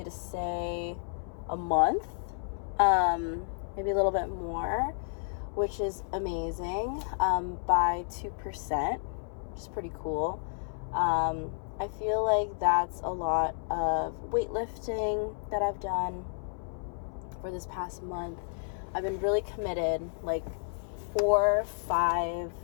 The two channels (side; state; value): right; silent; 57 dB below the other